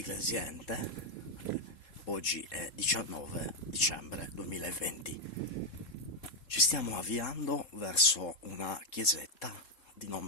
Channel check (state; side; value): late; right; 3.7 ms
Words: oggi è 19 dicembre 2020. Ci stiamo avviando verso una chiesetta di